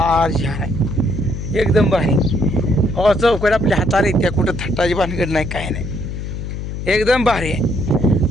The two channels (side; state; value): left; noise; hum, 6 dB below the sound